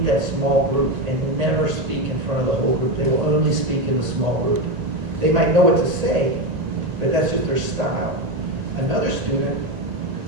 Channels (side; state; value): left; late; 1.9 ms